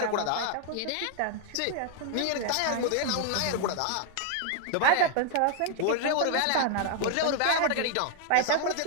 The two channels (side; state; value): both; different; correlation 0.00